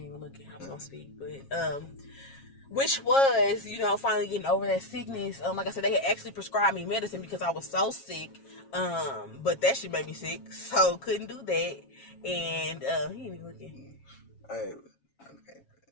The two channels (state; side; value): late; right; 7.4 ms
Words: even looking. I was gonna speak, but which was finally getting over that sickness. Like I said, they had actually prescribed me medicine because I was so sick. But that shit made me sick, so couldn't do that. And he ain't even looking. Okay.